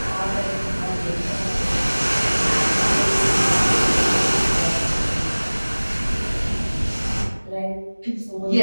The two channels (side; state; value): both; inverted; correlation -1.00